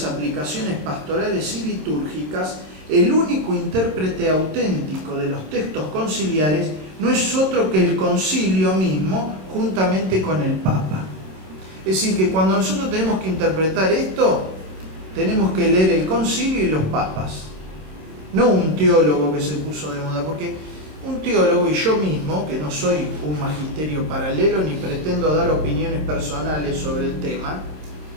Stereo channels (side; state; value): left; late; 26 ms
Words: aplicaciones pastorales y litúrgicas, el único intérprete auténtico de los textos conciliares no es otro que el concilio mismo, juntamente con el Papa. Es decir, que cuando nosotros tenemos que interpretar esto, tenemos que leer el concilio y los papas. No un teólogo que se puso de moda, porque un teólogo y yo mismo, que no soy un magisterio paralelo ni pretendo dar opiniones personales sobre el tema,